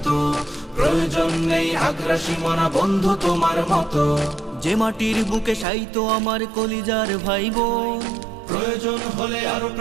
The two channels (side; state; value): left; drops out; at 5.7 s